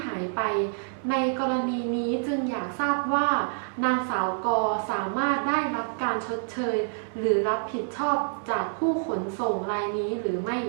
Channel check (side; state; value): left; silent; 60 dB below the other